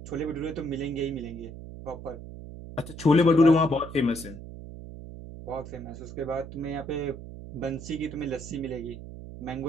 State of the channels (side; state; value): right; noise; hum, 12 dB below the sound